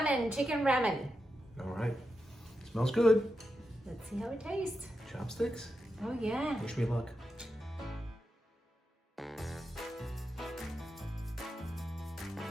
chicken ramen. All right. Smells good. Let's see how it tastes. Chopsticks? Oh yeah. Wish me luck.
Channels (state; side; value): normal; both; correlation 0.88